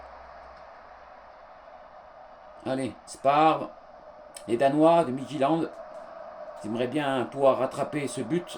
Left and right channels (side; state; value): both; identical; correlation 1.00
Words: Allez, Spar. Les Danois de Midtjylland. Ils aimeraient bien pouvoir rattraper ce but.